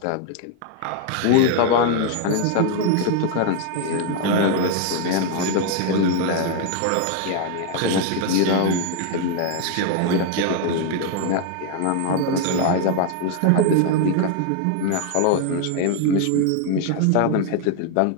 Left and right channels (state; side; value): different; both; correlation 0.01